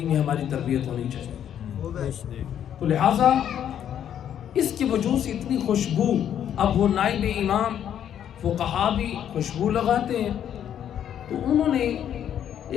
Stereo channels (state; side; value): quieter; right; 9.8 dB